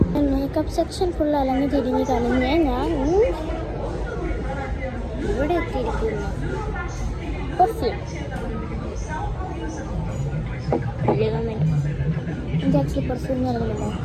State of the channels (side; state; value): both; identical; correlation 1.00